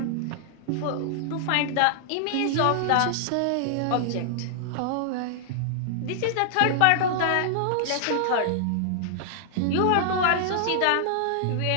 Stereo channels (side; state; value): both; different; correlation -0.01